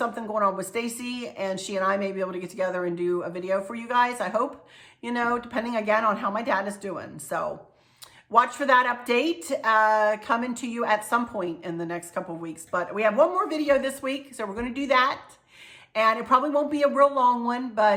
going on with Stacy, and she and I may be able to get together and do a video for you guys. I hope, you know, depending again on how my dad is doing. So watch for that update coming to you at some point in the next couple of weeks. But we have one more video this week, so we're going to do that. And it probably won't be a real long one,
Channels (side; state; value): both; identical; correlation 1.00